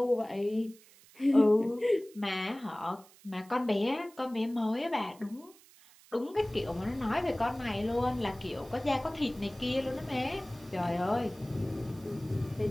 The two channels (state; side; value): noise; right; hiss, 25 dB below the sound